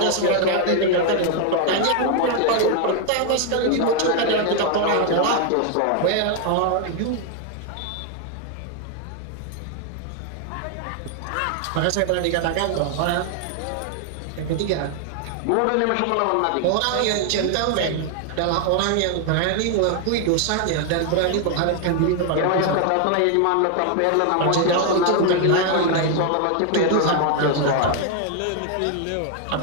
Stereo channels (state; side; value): different; both; correlation 0.00